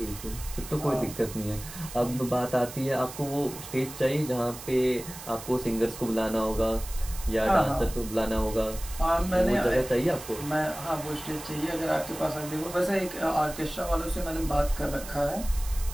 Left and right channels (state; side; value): noise; right; hiss, 13 dB below the sound